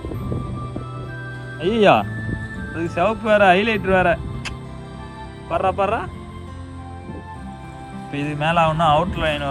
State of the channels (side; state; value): both; identical; correlation 1.00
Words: ஐயா அதுக்கு சிவப்பு வேற, ஹைலைட்டர் வேற. பர்றா பர்றா. இப்போ இது மேலே ஆகணும்னா அவுட் லைன்